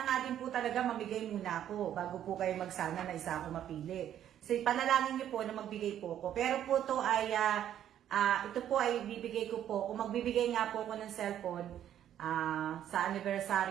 nga din po talaga mamigay muna ako bago po kayo magsana na isa ako mapili. So, panalangin niyo po na magbigay po ako. Pero po to ay, ito po ay bibigay ko po. Kung magbibigay nga po ako ng cellphone, sa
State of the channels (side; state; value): left; quieter; 10.7 dB